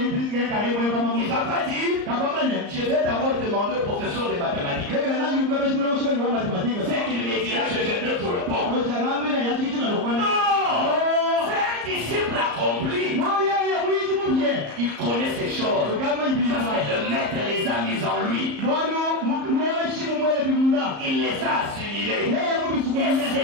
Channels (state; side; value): late; left; 34 ms